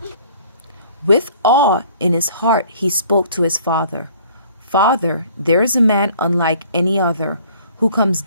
With awe in his heart he spoke to his father. "Father, there is a man unlike any other, who comes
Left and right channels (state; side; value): inverted; both; correlation -0.54